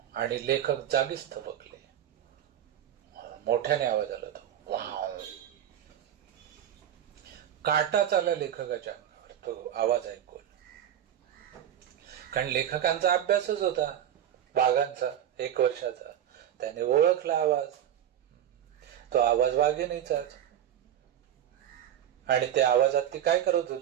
आणि लेखक जागीच थबकले. मोठ्याने आवाज आला तो, वाव. काटा चालला लेखकाच्या अंगावर तो आवाज ऐकून. कारण लेखकांचा अभ्यासच होता वाघांचा 1 वर्षाचा. त्याने ओळखला आवाज. तो आवाज वाघिणीचाच. आणि त्या आवाजात ती काय करत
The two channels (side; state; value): left; quieter; 10.5 dB